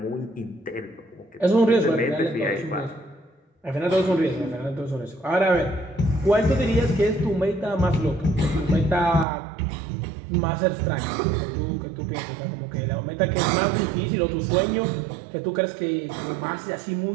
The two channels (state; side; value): drops out; left; at 9.2 s